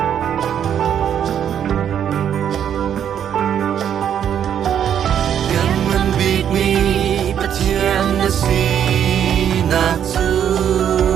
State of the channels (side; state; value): left; quieter; 9.2 dB